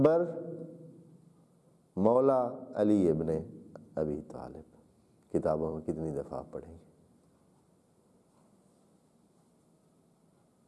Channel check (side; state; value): both; identical; correlation 1.00